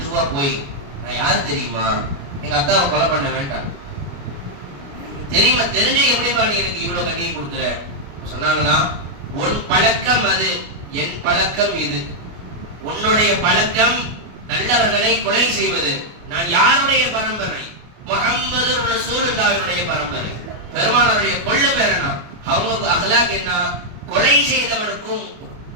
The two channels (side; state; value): left; late; 29 ms